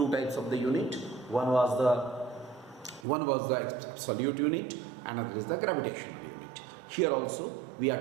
types of the unit. One was the absolute unit, and another is the gravitational unit. Here also we are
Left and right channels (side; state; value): left; drops out; at 3.1 s